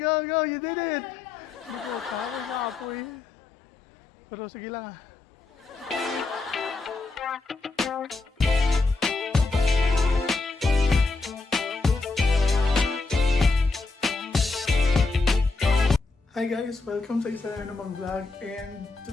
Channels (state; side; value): quieter; right; 3.7 dB